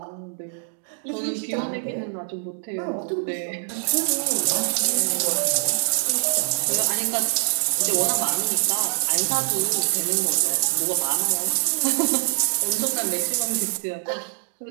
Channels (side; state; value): left; silent; digital silence